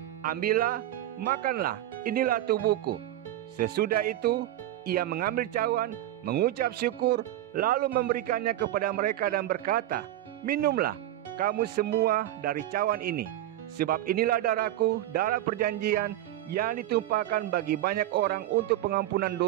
ambillah, makanlah, inilah tubuhku. Sesudah itu, ia mengambil cawan, mengucap syukur, lalu memberikannya kepada mereka dan berkata, minumlah kamu semua dari cawan ini, sebab inilah darahku, darah perjanjian yang ditumpahkan bagi banyak orang untuk pengampunan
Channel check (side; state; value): left; quieter; 13.7 dB